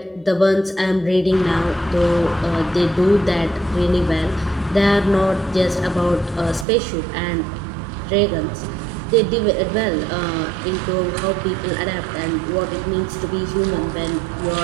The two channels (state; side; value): drops out; left; at 6.7 s